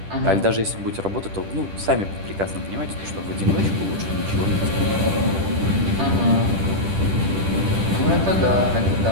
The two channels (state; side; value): late; left; 10 ms